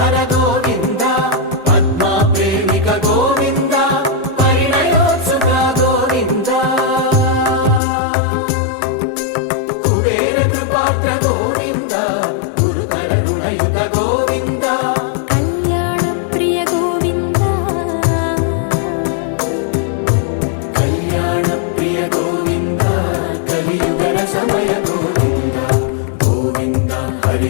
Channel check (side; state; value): right; drops out; at 7.8 s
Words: गोविन्द पद्मा प्रेमिक गोविन्द परिणयोत्सुक गोविन्द कुबेर कृपात्र गोविन्द गुरुतर ऋणयुत गोविन्द कल्याणप्रिय गोविन्द कल्याणप्रिय गोविन्द कलियुगर समय गोविन्द गोविन्द